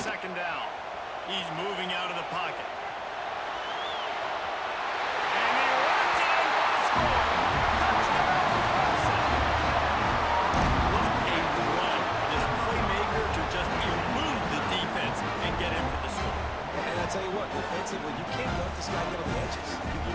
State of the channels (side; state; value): both; identical; correlation 1.00